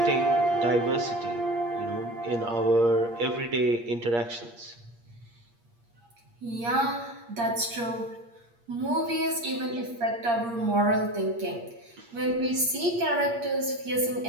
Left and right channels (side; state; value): left; late; 8.6 ms